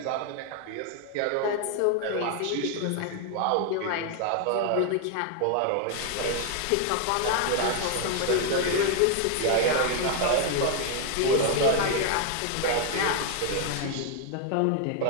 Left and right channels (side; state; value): both; different; correlation 0.00